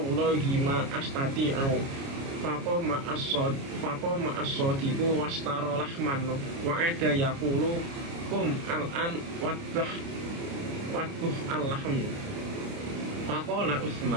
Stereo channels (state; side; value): late; left; 29 ms